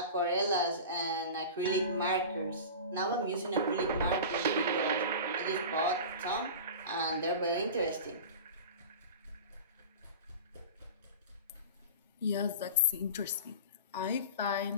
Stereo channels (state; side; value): inverted; both; correlation -0.32